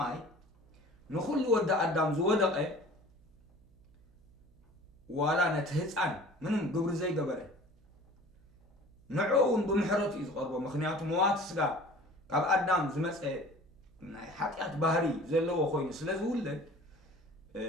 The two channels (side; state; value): right; noise; hum, 28 dB below the sound